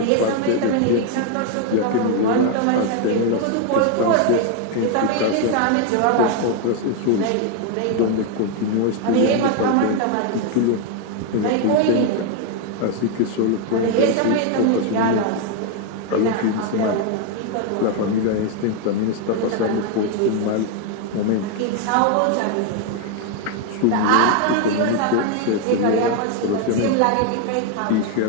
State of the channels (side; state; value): both; different; correlation 0.01